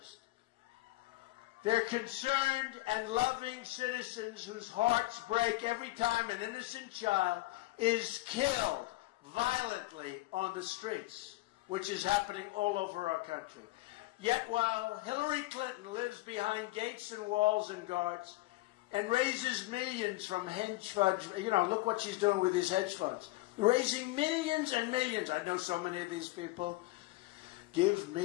They're concerned and loving citizens whose hearts break every time an innocent child is killed violently on the streets, which is happening all over our country. Yet while Hillary Clinton lives behind gates and walls and guards and raises millions from hedge funds, you know, look what she's doing with these hedge funds. Raising millions and millions. I know so many of these people. Give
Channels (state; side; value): quieter; right; 19.7 dB